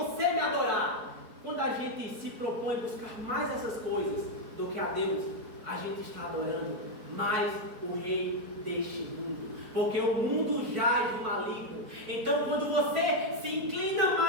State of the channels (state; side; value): late; left; 4.5 ms